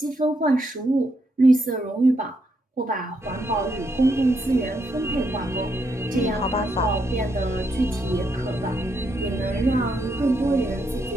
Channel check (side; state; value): both; normal; correlation 0.78